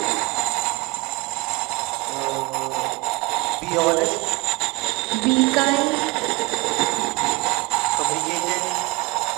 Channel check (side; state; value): left; quieter; 26.0 dB